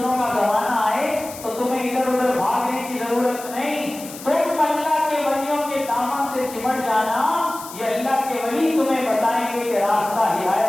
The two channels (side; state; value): left; noise; hiss, 14 dB below the sound